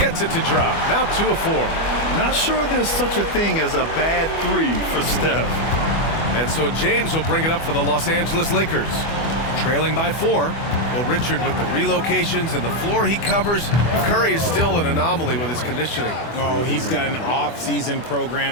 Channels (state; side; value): late; right; 24 ms